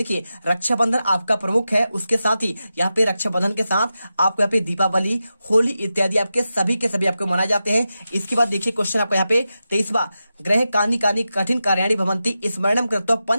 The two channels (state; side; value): inverted; both; correlation -0.91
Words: रक्षाबंधन आपका प्रमुख है, उसके साथ ही यहाँ पे रक्षाबंधन के साथ आपको यहाँ पे दीपावली, होली इत्यादि आपके सभी के सभी आपको मनाए जाते हैं। इसके बाद देखिए क्वेश्चन आपको यहाँ पे 23वां, ग्रह कानी कानी कठिन कार्याणी भवंती स्मरणम कृत्वा